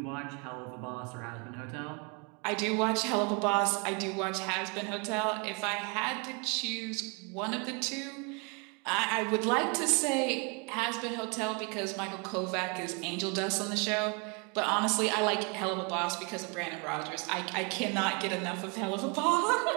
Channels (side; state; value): left; quieter; 33.4 dB